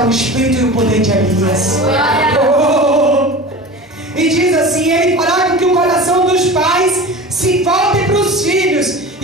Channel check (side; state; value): both; normal; correlation 0.33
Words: o espírito e o poder de Elias. E diz assim: ele fará com que o coração dos pais se volte para os filhos,